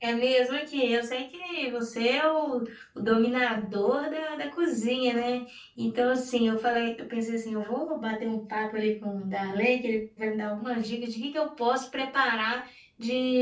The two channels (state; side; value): identical; both; correlation 1.00